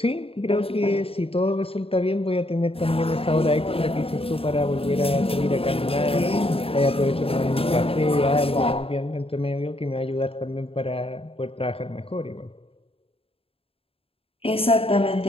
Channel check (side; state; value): right; late; 0.27 ms